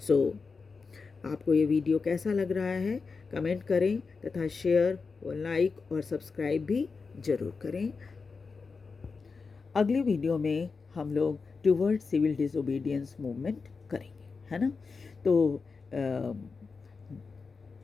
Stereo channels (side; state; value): right; quieter; 4.7 dB